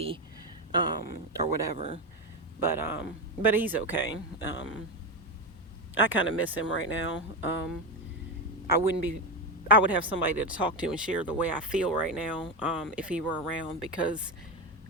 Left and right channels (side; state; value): both; normal; correlation 0.14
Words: or whatever, but he's okay. I kind of miss him right now. I would have somebody to talk to and share the way I feel right now, if he were around, because